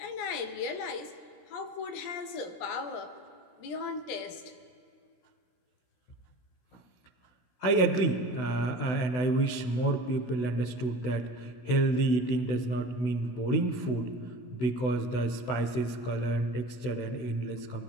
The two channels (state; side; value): late; right; 16 ms